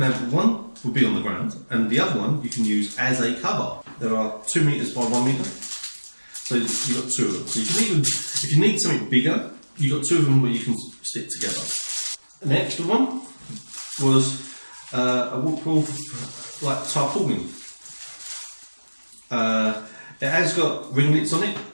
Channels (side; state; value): both; inverted; correlation -1.00